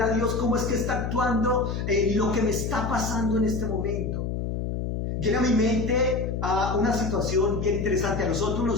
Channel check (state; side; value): noise; left; hum, 3 dB below the sound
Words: a Dios cómo es que está actuando en lo que me está pasando en este momento. Llega a mi mente una situación bien interesante. A nosotros